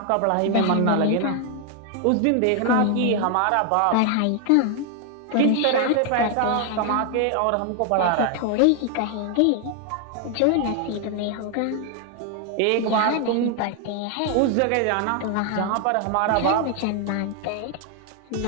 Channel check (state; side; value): different; both; correlation 0.00